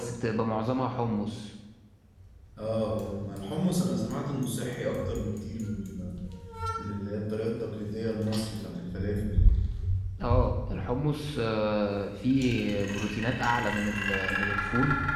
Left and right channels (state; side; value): identical; both; correlation 1.00